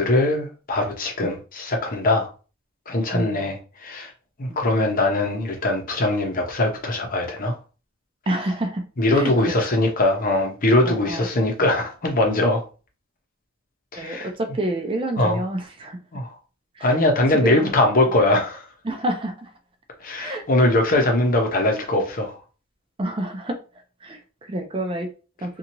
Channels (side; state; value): both; normal; correlation 0.25